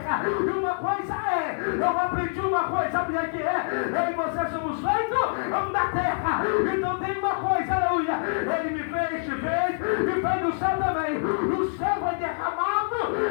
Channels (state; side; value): silent; right; 61 dB below the other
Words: E uma coisa eu aprendi uma coisa, sabe o que é? Eu e você somos feitos da terra. Então tem uma coisa, aleluia, ele me fez, te fez e fez do céu também. O céu foi derramado,